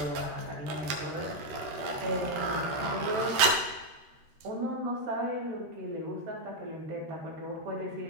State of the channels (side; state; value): left; late; 13 ms